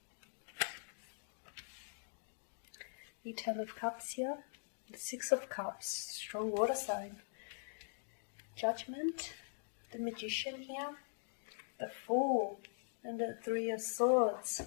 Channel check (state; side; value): silent; right; digital silence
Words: The Ten of Cups here, the Six of Cups, strong water sign, Judgment, the Magician here, the Fool, and the Three of Swords.